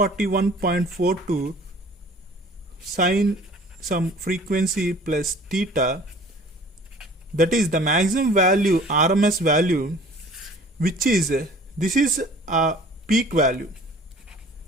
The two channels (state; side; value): normal; both; correlation 0.49